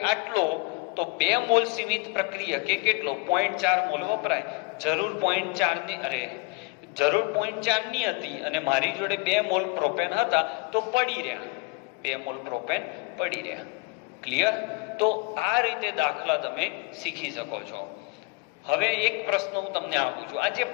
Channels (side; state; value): right; quieter; 26.9 dB